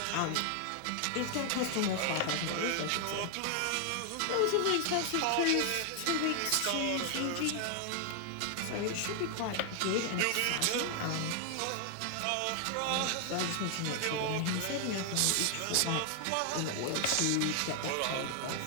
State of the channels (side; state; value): both; different; correlation 0.00